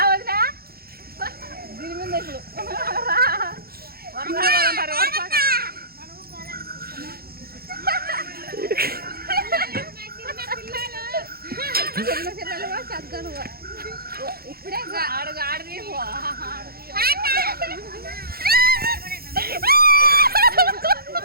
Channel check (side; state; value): left; late; 0.44 ms